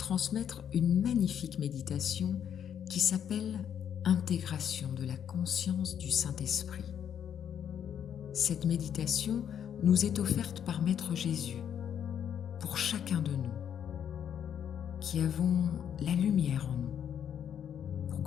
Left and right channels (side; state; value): right; quieter; 8.9 dB